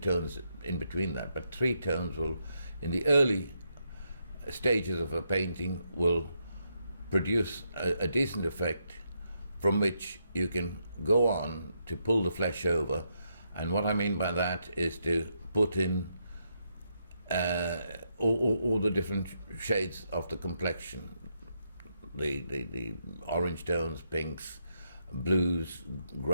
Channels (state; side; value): inverted; both; correlation -0.80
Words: in between that, but 3 tones will, in the early stages of a painting, will produce a decent effect from which you can go on to pull the flesh over. And what I mean by that is to put in all the different shades of the complexion, the orange tones, pinks, blues,